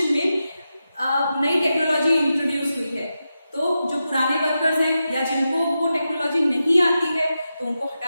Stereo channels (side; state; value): both; inverted; correlation -0.90